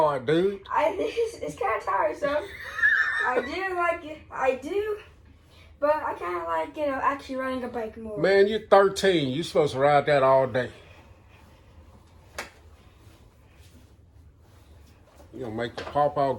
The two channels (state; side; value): identical; both; correlation 1.00